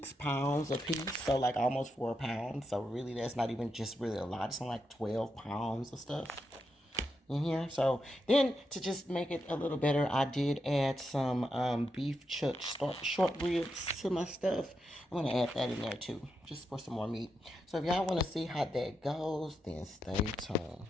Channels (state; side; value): normal; both; correlation 0.84